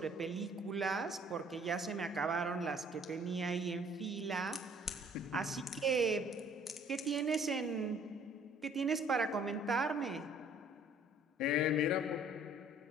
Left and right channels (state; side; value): normal; both; correlation 0.57